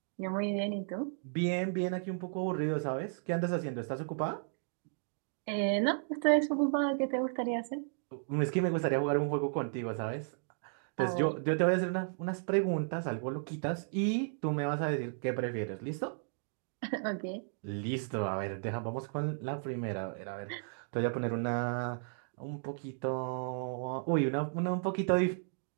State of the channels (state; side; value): silent; left; digital silence